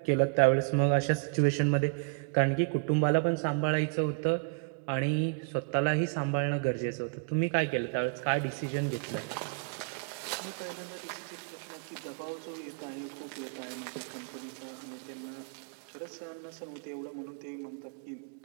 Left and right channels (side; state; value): left; quieter; 35.8 dB